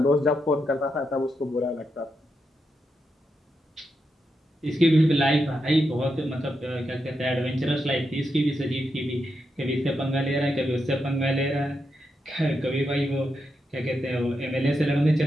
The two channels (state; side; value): normal; both; correlation 0.84